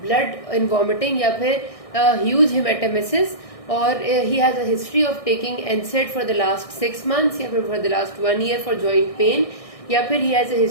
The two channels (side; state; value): right; late; 1.6 ms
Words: blood in vomiting या फिर huge hematemesis, और he has a history of taking NSAID for the last 6 months या फिर for the last 1 year for joint pain, या फिर he has a